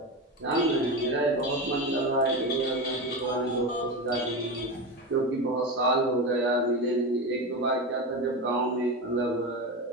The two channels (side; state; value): both; normal; correlation 0.20